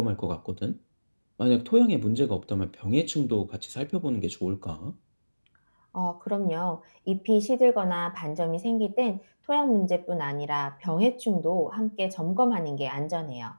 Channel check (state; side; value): inverted; both; correlation -1.00